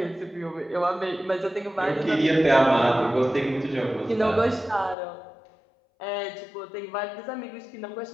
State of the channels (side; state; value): right; drops out; at 5.0 s